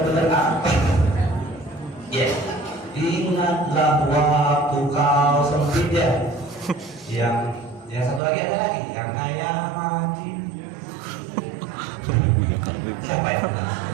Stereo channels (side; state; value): left; drops out; at 8.2 s